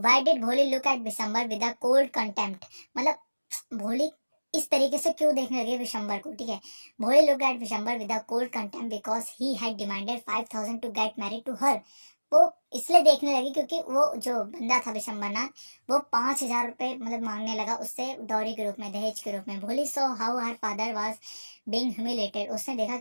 डिड भोली look at Bishamber with a cold contempt. मतलब भोली इस तरीके से क्यों देखने लगे विशंबर को। ठीक है, Bholi look at Bishamber with a cold contempt because he had demanded 5,000 to get married to her. वो इसलिए देखने लगी क्योंकि वो जो बंदा था विशंबरनाथ, वो 5,000 रुपए मतलब मांगने लगा उससे डॉरी के रूप में, दहेज के रूप में। भोली so how her father was being humiliated, उसने देखा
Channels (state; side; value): inverted; both; correlation -1.00